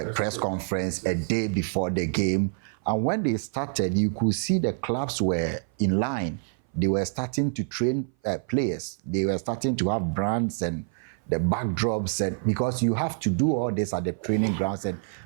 conference a day before the game. And when they started, you could see the clubs were in line. They were starting to train players. They were starting to have brands and the backdrops, and because you have to do all this at the training grounds, and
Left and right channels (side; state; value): left; silent; 57 dB below the other